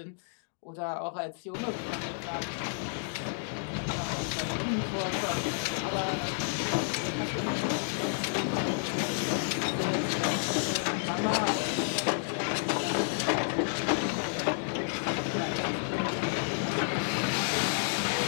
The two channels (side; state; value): right; silent; digital silence